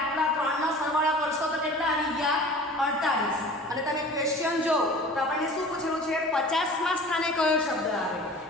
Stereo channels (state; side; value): normal; both; correlation 0.42